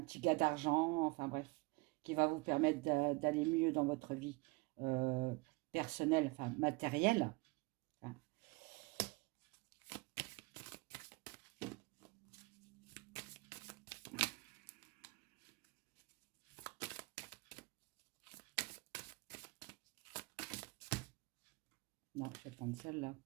gars d'argent, enfin bref, qui va vous permettre d'aller mieux dans votre vie personnelle, enfin matérielle, hein. Non, je vais prendre celle-là.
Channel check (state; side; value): quieter; left; 25.4 dB